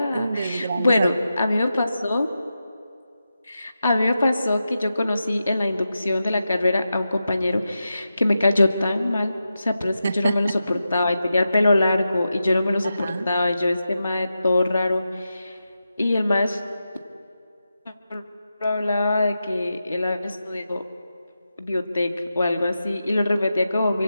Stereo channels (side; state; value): both; inverted; correlation -0.90